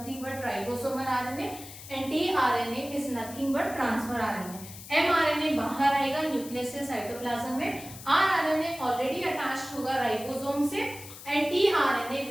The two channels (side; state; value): left; noise; hiss, 15 dB below the sound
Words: but ribosomal RNA and tRNA is nothing but transfer RNA. mRNA बाहर आएगा न्यूक्लियस से साइटोप्लाज्म में, rRNA ऑलरेडी अटैच्ड होगा राइबोसोम से and tRNA